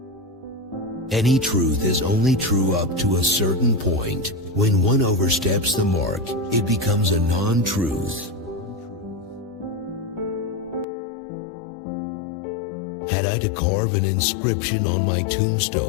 Any truth is only true up to a certain point. When one oversteps the mark, it becomes a non-truth. Had I to carve an inscription on my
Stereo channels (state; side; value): drops out; right; at 10.9 s